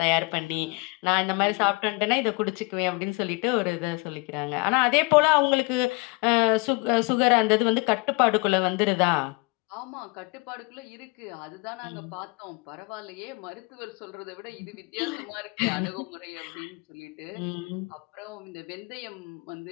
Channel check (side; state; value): right; quieter; 28.5 dB